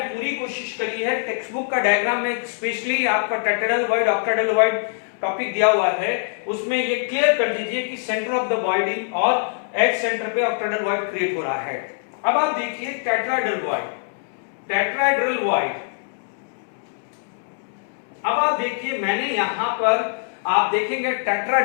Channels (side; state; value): right; silent; 63 dB below the other